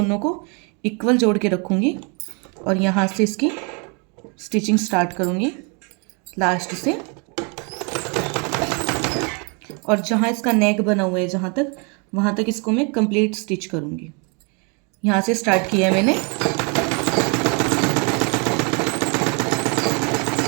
को इक्वल जोड़ के रखूँगी और यहाँ से इसकी स्टिचिंग स्टार्ट करूँगी लास्ट से। और जहाँ इसका नेक बना हुआ है जहाँ तक, वहाँ तक इसको मैं कंप्लीट स्टिच करूँगी। यहाँ से स्टार्ट किया है मैंने।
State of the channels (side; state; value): left; quieter; 34.2 dB